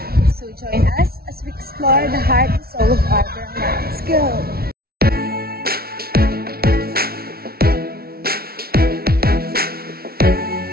So join us as we explore the heart and soul of our barangay. Let's go!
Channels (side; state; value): left; late; 0.44 ms